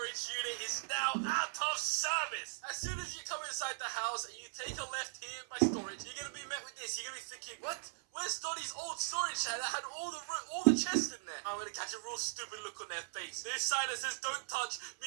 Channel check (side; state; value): left; silent; 52 dB below the other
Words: unit is now out of service. As soon as you come inside the house and you take a left here in my storage, you're gonna be met with this. You're gonna be thinking, what? Where's Donnie's old storage shed that had all the chests in there? I'm gonna catch a real stupid look on their face. This sign that says don't touch